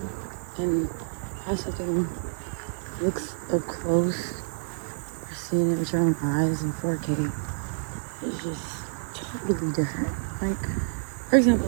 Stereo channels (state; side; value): silent; left; digital silence